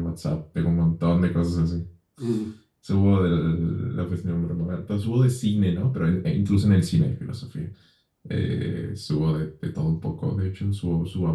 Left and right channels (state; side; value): identical; both; correlation 1.00